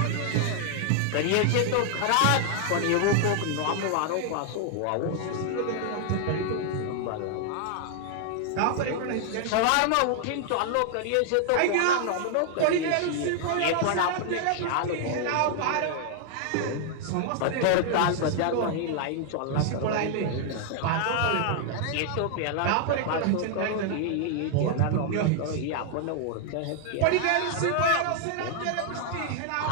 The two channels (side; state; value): both; different; correlation 0.00